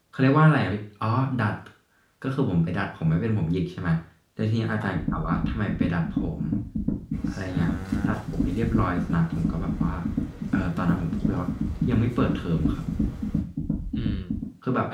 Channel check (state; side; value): identical; both; correlation 1.00